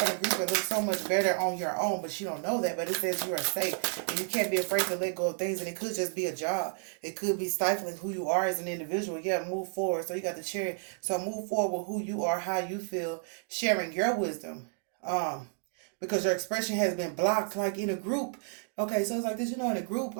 the group and look so much better on your own, but she don't know that. But it says you are safe, and you can't be afraid to let go of things. And it could just be a job. It could be stifling who you are as an individual. Yeah, move forward. So you got to share. So move forward with who you are, how you feel, sharing your wisdom. Because your expression has been blocked, like in a group. Okay, so it's like this. In a group,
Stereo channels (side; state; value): left; silent; 57 dB below the other